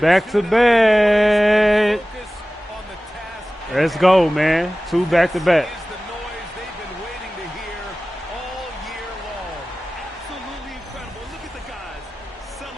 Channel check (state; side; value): normal; both; correlation 0.97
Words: back to back. Let's go, man. 2 back to back.